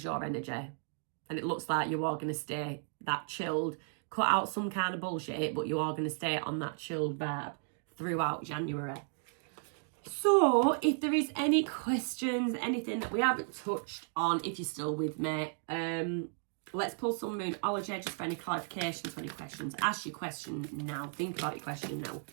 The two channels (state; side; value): silent; left; 55 dB below the other